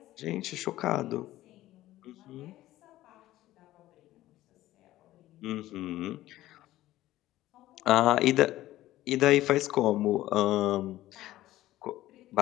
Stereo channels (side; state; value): right; quieter; 15.3 dB